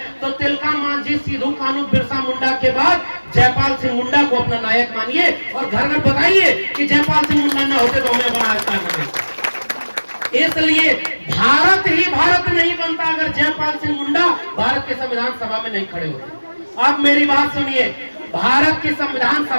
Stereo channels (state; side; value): inverted; both; correlation -1.00